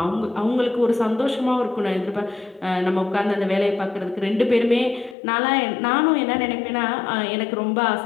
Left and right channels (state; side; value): drops out; right; at 5.2 s